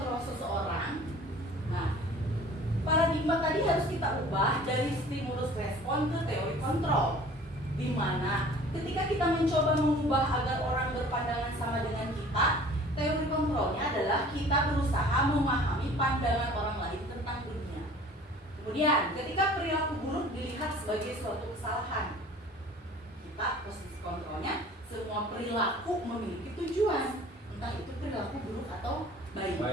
seseorang? Nah, paradigma tadi harus kita ubah dari stimulus respon ke teori kontrol, di mana ketika kita mencoba mengubah agar orang berpandangan sama dengan kita, teori kontrolnya adalah kita berusaha memahami pandangan orang lain tentang dunia. Kemudian, ketika perilaku buruk dilihat sebagai suatu kesalahan, kita posisi kontrolnya semua perilaku memiliki tujuan, entah itu perilaku buruk atau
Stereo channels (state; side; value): normal; both; correlation 0.48